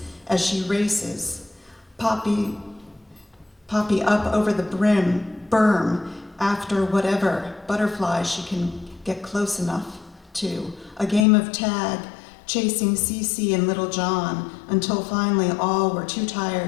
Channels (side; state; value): right; drops out; at 11.2 s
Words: as she races. Poppy up over the berm after whatever butterflies she can get close enough to. A game of tag, chasing Cece and Little John until finally all were too